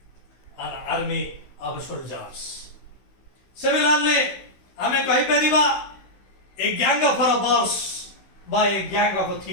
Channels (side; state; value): right; late; 16 ms